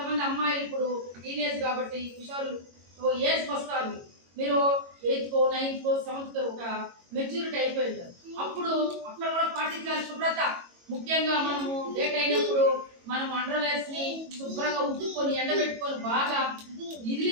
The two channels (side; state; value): left; late; 22 ms